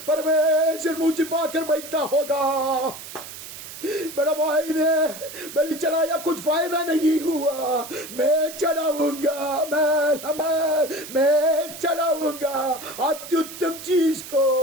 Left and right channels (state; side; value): noise; right; hiss, 12 dB below the sound